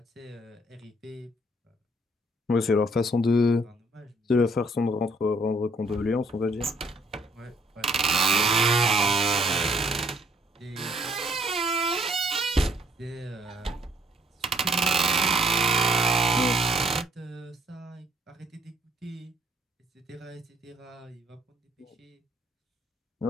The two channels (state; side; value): normal; both; correlation 0.65